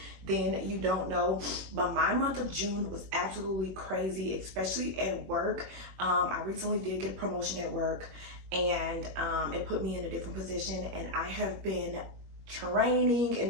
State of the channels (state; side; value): late; left; 21 ms